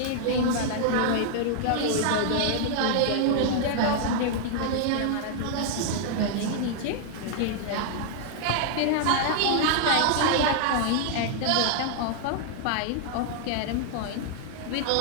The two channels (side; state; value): both; different; correlation 0.00